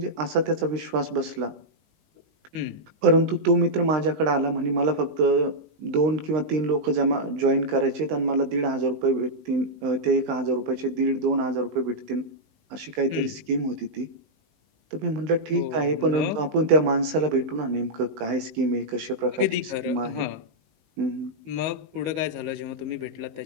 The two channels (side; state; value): left; late; 20 ms